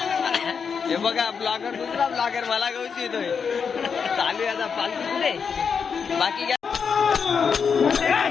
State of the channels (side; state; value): right; quieter; 6.2 dB